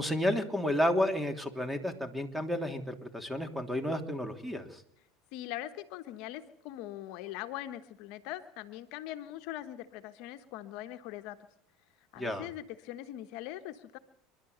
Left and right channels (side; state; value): both; normal; correlation 0.72